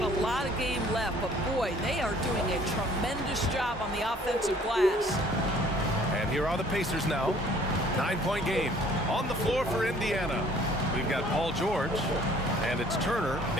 a lot of game left, but boy, they are doing a tremendous job on the offensive glass. And here are the Pacers now. 9-point game on the floor for Indiana. We've got Paul George, and it's Turner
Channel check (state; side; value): normal; both; correlation 0.56